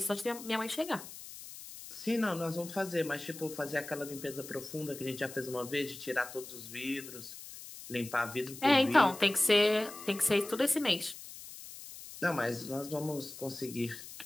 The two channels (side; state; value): left; noise; hiss, 13 dB below the sound